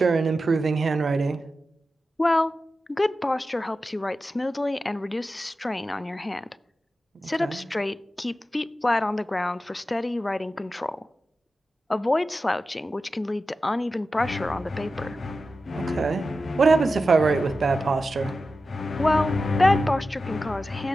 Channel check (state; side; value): normal; both; correlation 0.92